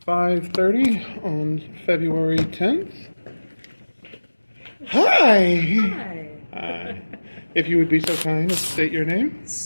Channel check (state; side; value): inverted; both; correlation -1.00